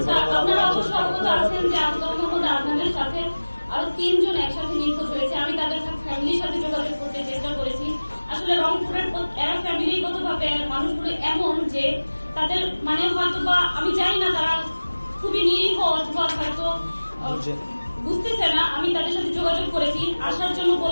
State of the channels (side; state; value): both; inverted; correlation -1.00